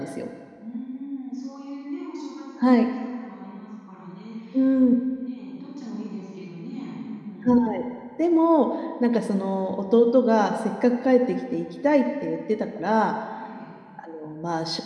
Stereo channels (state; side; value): identical; both; correlation 1.00